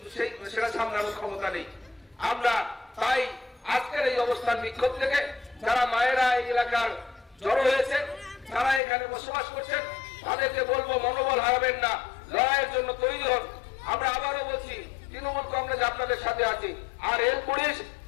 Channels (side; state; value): right; drops out; at 8.8 s